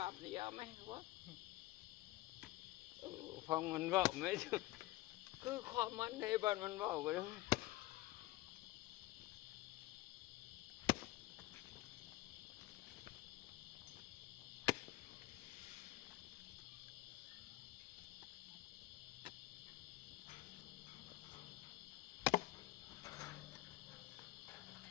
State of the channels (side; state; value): right; quieter; 18.0 dB